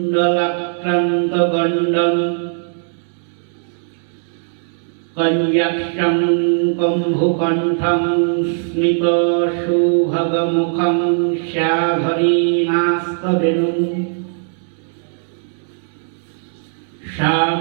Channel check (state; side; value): silent; left; 67 dB below the other